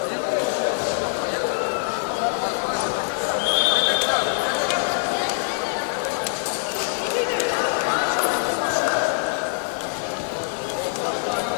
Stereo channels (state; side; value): silent; right; digital silence